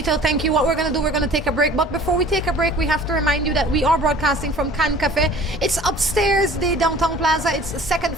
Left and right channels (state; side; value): normal; both; correlation 0.47